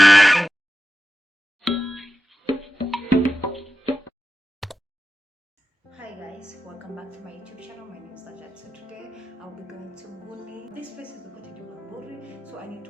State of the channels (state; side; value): normal; both; correlation 0.93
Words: guys, welcome back to my YouTube channel. My name is Najat. So today I'll be going to Nguni. This place is located in Bamburi, so I need to